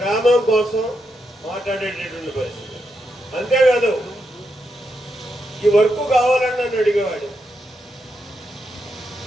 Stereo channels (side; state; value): both; normal; correlation 0.83